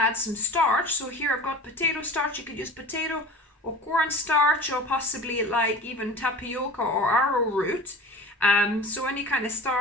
some starch. So here I've got potato starch. You could use potato or corn starch or possibly like even tapioca or arrowroot. So any kind of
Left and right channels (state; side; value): normal; both; correlation 0.37